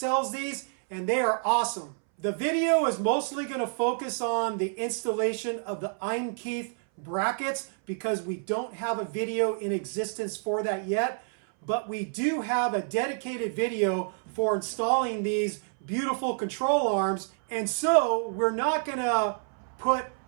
these and they are awesome. The video is mostly going to focus on the installation of the Eimkeith brackets because we don't have a video in existence for that yet, but we do have a dedicated video for installing these beautiful control arms. And so we're not going to put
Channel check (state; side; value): silent; left; 59 dB below the other